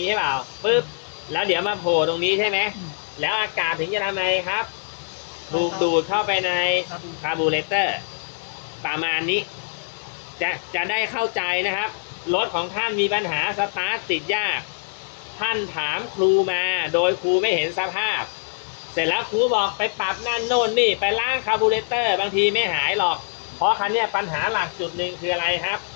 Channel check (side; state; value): right; silent; digital silence